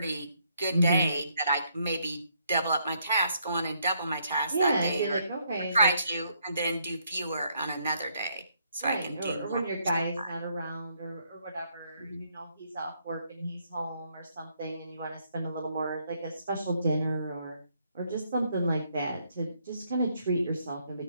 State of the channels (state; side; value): inverted; both; correlation -0.72